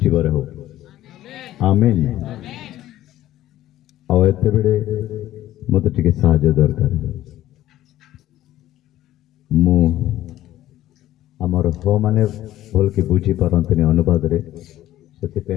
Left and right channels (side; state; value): right; quieter; 14.0 dB